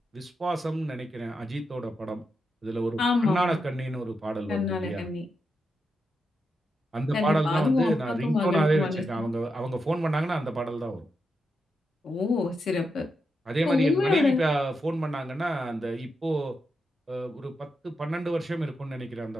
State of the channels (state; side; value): normal; both; correlation 0.85